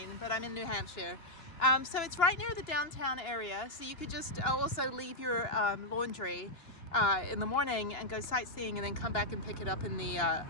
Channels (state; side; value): late; right; 2.9 ms